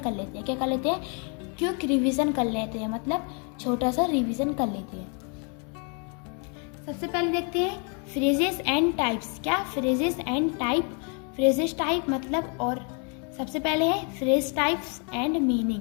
लेते हैं। क्या कर लेते हैं, क्विक रिवीजन कर लेते हैं, मतलब छोटा सा रिवीजन कर लेते हैं। सबसे पहले देखते हैं फ्रेजेस एंड टाइप्स। क्या, phrases and type. Phrases type मतलब, और सबसे पहले है phrase types and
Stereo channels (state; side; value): quieter; right; 37.7 dB